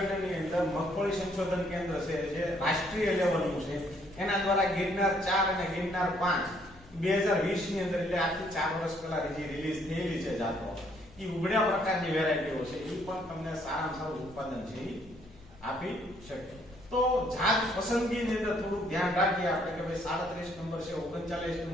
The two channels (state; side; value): normal; both; correlation 0.67